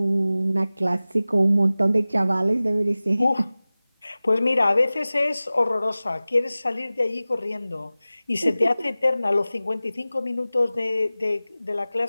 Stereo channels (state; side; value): inverted; both; correlation -0.97